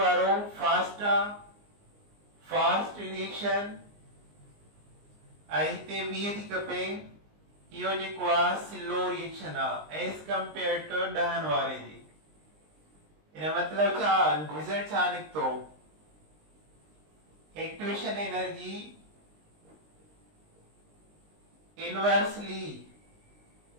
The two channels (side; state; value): left; late; 19 ms